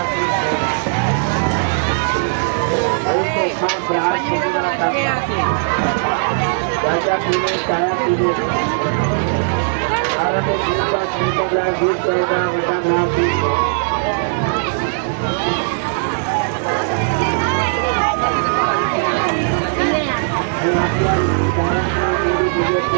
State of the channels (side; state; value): left; silent; digital silence